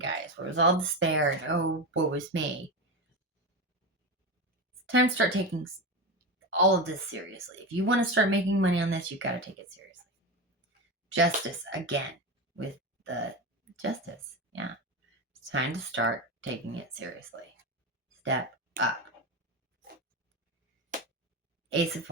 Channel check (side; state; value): both; normal; correlation 0.19